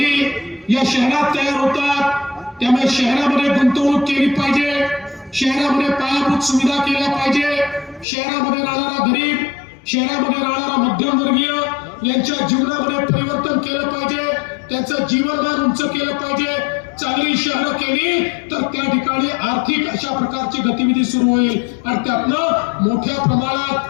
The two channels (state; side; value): drops out; right; at 8.1 s